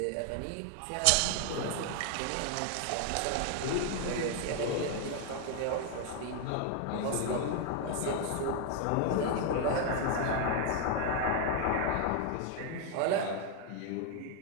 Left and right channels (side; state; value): both; different; correlation 0.00